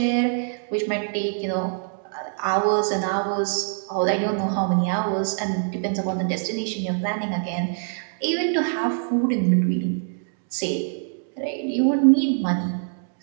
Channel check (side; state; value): left; silent; 62 dB below the other